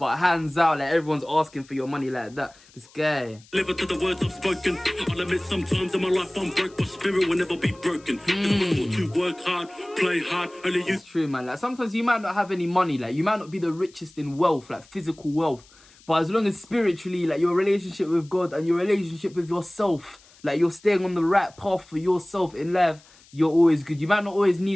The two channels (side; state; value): left; noise; hiss, 27 dB below the sound